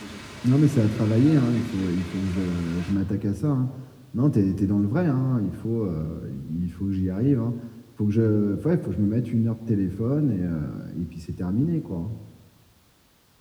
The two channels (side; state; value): both; identical; correlation 1.00